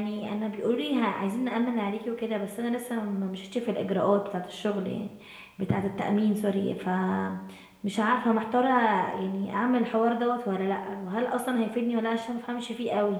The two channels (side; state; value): both; identical; correlation 1.00